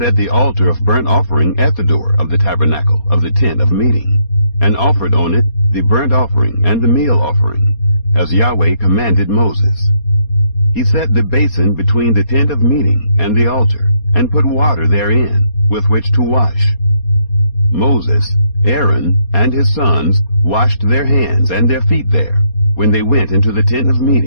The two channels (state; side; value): late; right; 4.2 ms